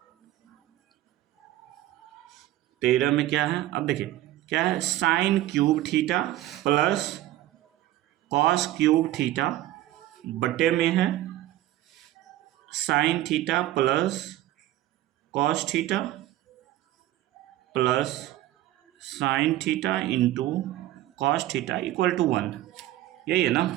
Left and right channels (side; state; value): left; quieter; 14.7 dB